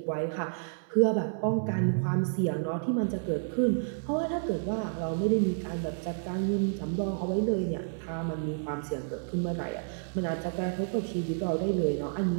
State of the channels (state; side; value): silent; left; 58 dB below the other